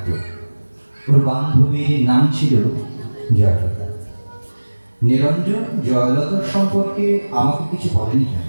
ওর বান্ধবীর নাম ছিল জয়লতা। নিরঞ্জন জয়লতার সম্পর্কে আমাকে কিছু বলেনি কেন।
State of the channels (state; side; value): inverted; both; correlation -1.00